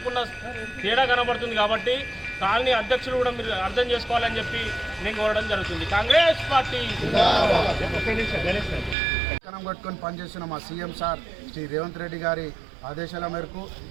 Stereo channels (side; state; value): left; drops out; at 9.0 s